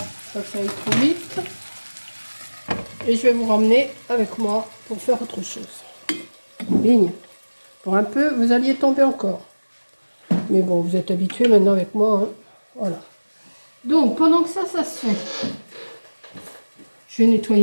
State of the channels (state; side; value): inverted; both; correlation -1.00